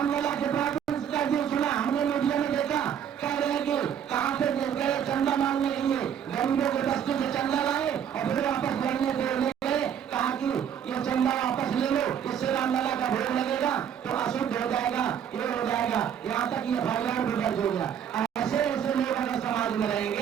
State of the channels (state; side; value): quieter; left; 8.7 dB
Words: के प्रारूप का जो सुना, हमने मीडिया में देखा, कह रहे हैं कि कहां से गए चंदा मांगने के लिए, गरीबों के दस्ते से चंदा लाए और फिर वापस लड़ने देने गए, कहा कि ये चंदा वापस ले लो, इससे रामलला का भोग लगेगा तो अशुद्ध हो जाएगा, ये हो जाएगा, यहाँ तक ये फाइलर भी दर्ज हो गया। ऐसे ऐसे लोग अगर समाज में